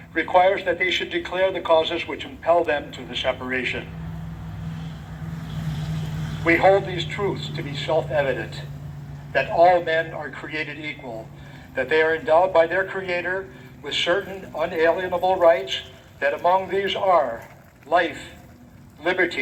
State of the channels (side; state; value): both; identical; correlation 1.00